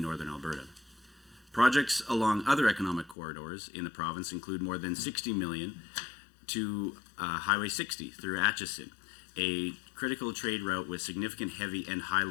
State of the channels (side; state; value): right; drops out; at 3.2 s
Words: northern Alberta. Projects along other economic corridors in the province include more than $60 million to Highway 60 through Atchison, a critical trade route with significant heavy and